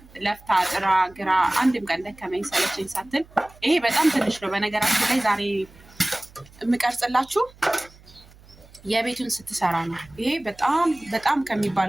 ለፍታ ጥራ ግራ አንድም ቀን ደከመኝ ሰለቸኝ ሳትል፣ ይሄ በጣም ትንሽ ነው። በነገራችን ላይ ዛሬ የምቀርጽላችሁ የቤቱን ስትሰራ ነው። ይሄ በጣም በጣም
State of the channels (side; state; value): right; noise; hum, 24 dB below the sound